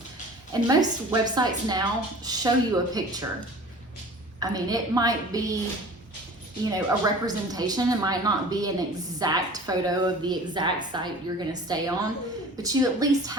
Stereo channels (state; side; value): normal; both; correlation 0.43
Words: And most websites now show you a picture. I mean, it might be, you know, a representation. It might not be an exact photo of the exact site you're going to stay on, but you at least